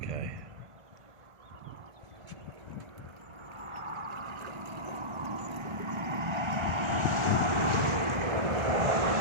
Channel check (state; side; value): late; left; 1.4 ms